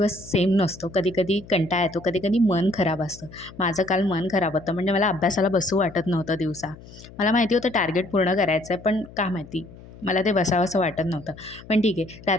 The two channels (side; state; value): left; noise; hum, 19 dB below the sound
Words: सेम नसतो. कधी-कधी कंटाळा येतो, कधी-कधी मन खराब असतं. माझं काल मन खराब होतं, म्हणजे मला अभ्यासाला बसू वाटत नव्हतं दिवसा. मला माहिती होतं टार्गेट पूर्ण करायचं आहे, पण का माहिती मला ते बसावंसं वाटत नव्हतं. पण ठीक आहे,